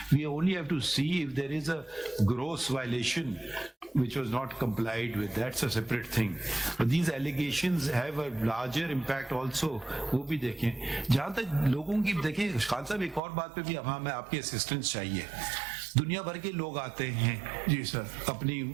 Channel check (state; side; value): drops out; left; at 13.2 s